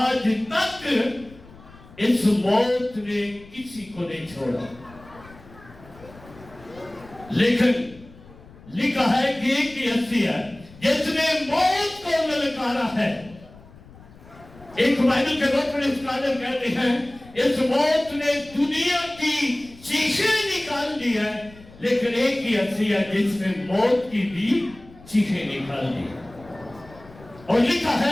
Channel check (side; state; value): left; noise; rumble, 22 dB below the sound